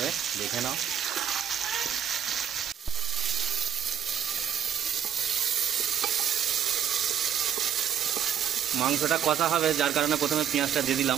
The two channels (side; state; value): left; quieter; 9.3 dB